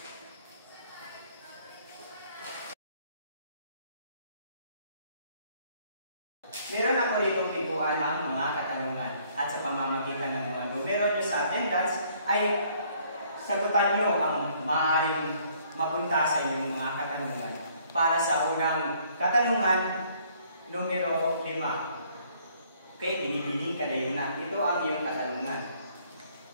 Meron ako ditong piguan ng mga katanungan at sa pamamagitan ng mga numero nyo sa attendance ay sagutan nyo ang maaaring mapunta sa inyong mga katanungan. Para sa unang katanungan, numero 5. Okay, binibining kadayunan. Ito ang iyong katanungan.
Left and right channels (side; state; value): both; inverted; correlation -0.63